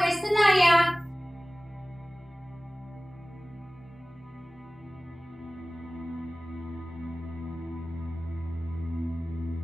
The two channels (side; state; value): both; normal; correlation 0.98